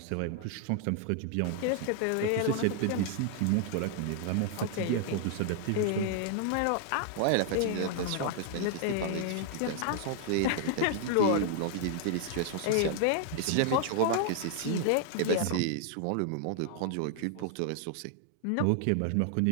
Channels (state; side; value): different; both; correlation 0.00